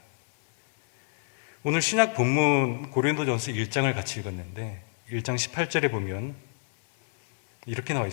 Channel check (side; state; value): right; silent; 60 dB below the other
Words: 오늘 신약 본문 고린도전서 1장을 같이 읽었는데 1장 18절에 보면 이렇게 나와